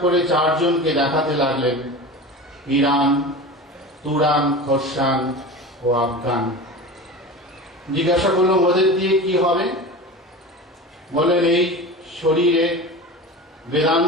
করে 4 জনকে দেখাতে লাগলেন, ইরান, তুরান, খোরসান ও আফগান। জিজ্ঞাসা করলাম, ওদের দিয়ে কি হবে? বলেন, এই শরীরে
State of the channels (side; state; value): both; normal; correlation 0.31